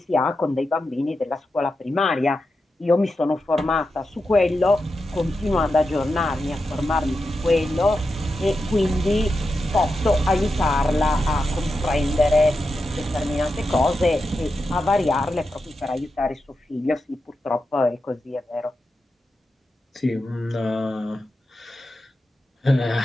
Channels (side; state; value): both; normal; correlation 0.89